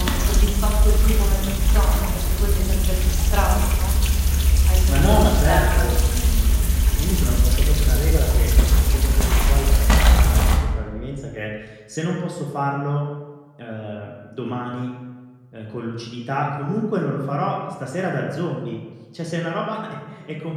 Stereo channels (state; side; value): identical; both; correlation 1.00